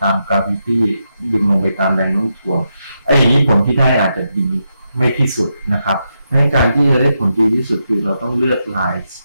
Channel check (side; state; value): both; inverted; correlation -0.84